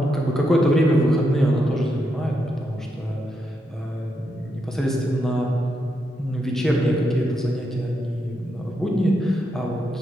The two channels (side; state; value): both; normal; correlation 0.82